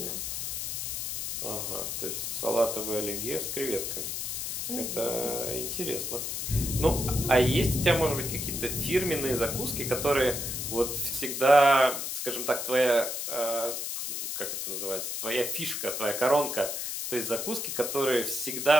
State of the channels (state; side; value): noise; left; hiss, 3 dB below the sound